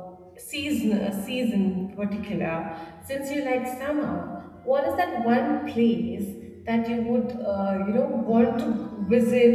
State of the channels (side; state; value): both; identical; correlation 1.00